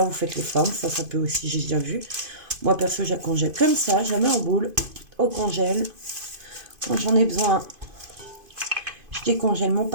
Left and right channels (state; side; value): late; left; 2.5 ms